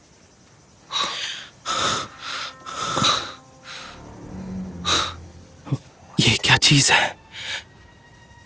ये क्या चीज है?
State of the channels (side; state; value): both; normal; correlation 0.98